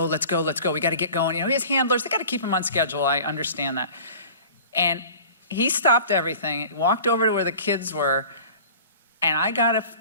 We got to get going. You know, he has handlers. They got to keep him on schedule. I understand that. And he stopped everything, walked over to where the kids were, and I got a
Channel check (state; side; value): inverted; both; correlation -0.43